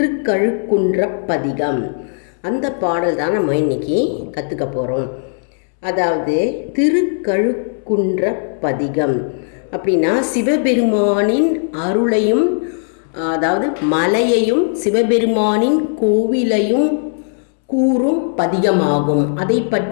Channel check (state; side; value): silent; right; 68 dB below the other